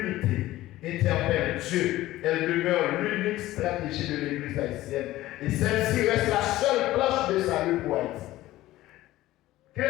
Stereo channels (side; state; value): right; quieter; 16.1 dB